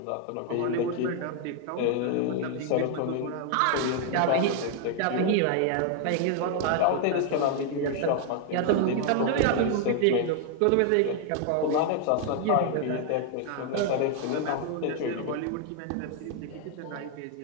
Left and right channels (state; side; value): different; both; correlation 0.00